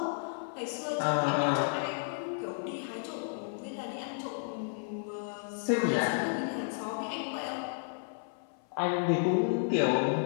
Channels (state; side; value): silent; right; 56 dB below the other